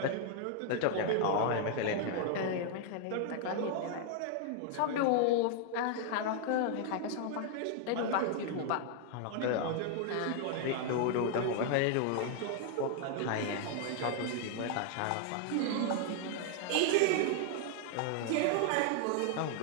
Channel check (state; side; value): different; both; correlation 0.00